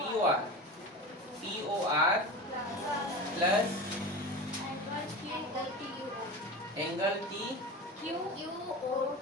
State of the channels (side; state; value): both; normal; correlation 0.29